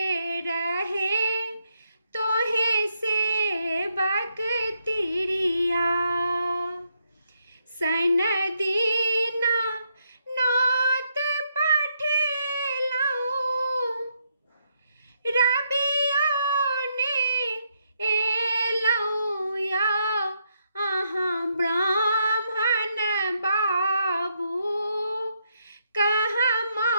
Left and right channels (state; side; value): inverted; both; correlation -0.77